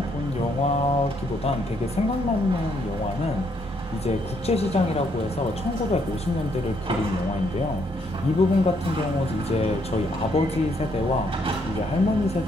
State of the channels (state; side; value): noise; right; rumble, 15 dB below the sound